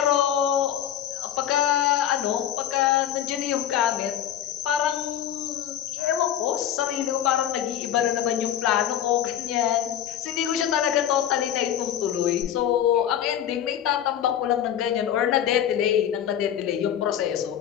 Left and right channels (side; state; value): right; quieter; 10.4 dB